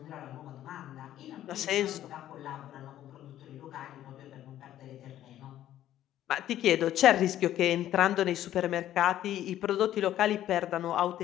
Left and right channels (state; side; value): quieter; right; 12.4 dB